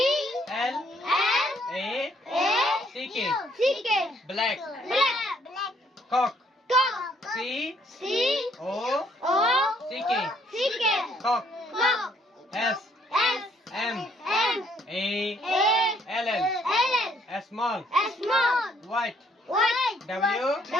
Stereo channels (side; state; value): both; normal; correlation 0.66